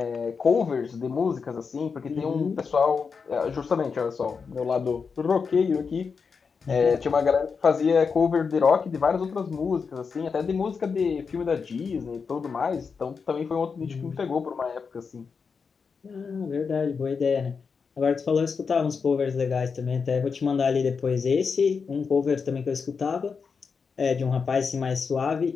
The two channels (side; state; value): right; quieter; 5.5 dB